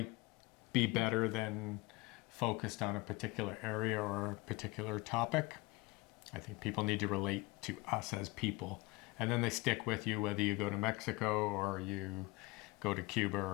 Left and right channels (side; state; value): right; quieter; 22.7 dB